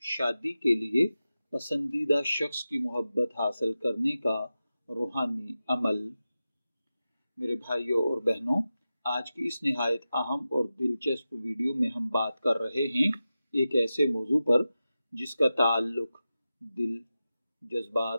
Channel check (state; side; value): inverted; both; correlation -0.93